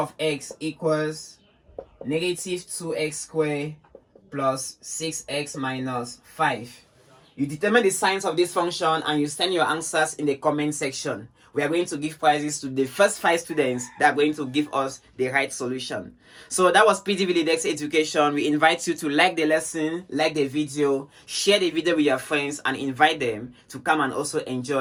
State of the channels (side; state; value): both; identical; correlation 1.00